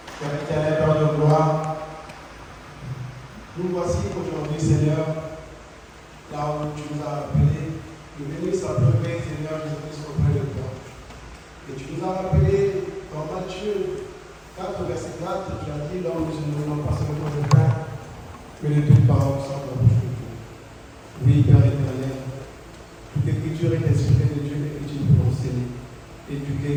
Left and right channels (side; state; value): both; identical; correlation 1.00